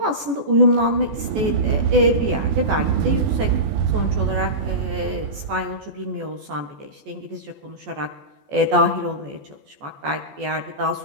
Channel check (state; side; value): late; left; 14 ms